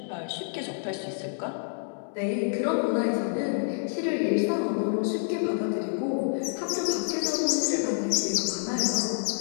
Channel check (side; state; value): right; silent; 59 dB below the other